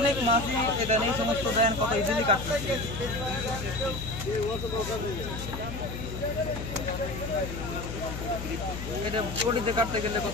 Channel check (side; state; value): left; noise; hum, 7 dB below the sound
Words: মাছই এখানে এই সমস্ত দেন, কত ইজিলি কাটতেছে। এটা পটিতে কাটতে গেলে